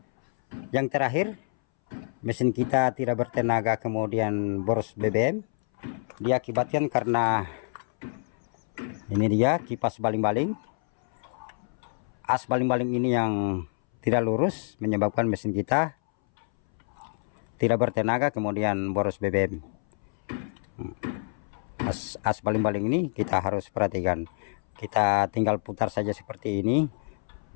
yang terakhir, mesin kita tidak bertenaga kemudian boros BBM, diakibatkan karena ini dia kipas baling-baling. As baling-baling ini yang tidak lurus menyebabkan mesin kita tidak bertenaga kemudian boros BBM. As baling-baling ini kita harus perhatikan. Kita tinggal putar saja seperti ini.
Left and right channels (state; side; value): silent; right; 60 dB below the other